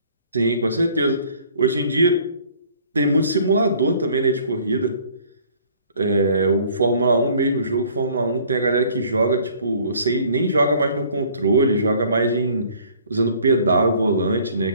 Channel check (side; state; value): both; inverted; correlation -0.56